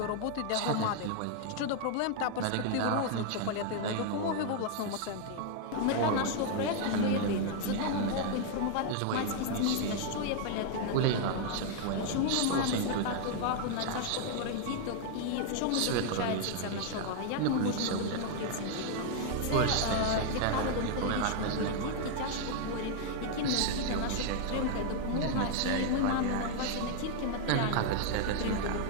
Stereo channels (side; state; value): both; different; correlation 0.00